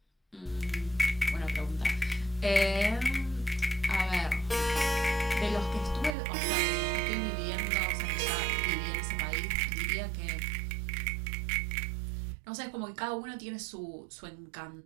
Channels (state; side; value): drops out; left; at 6.2 s